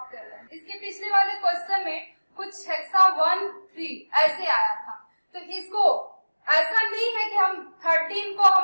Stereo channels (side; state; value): both; inverted; correlation -1.00